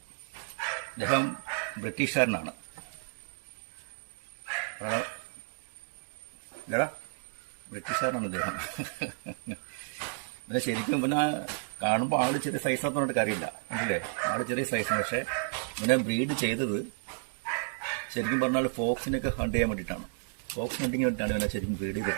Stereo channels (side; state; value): left; silent; digital silence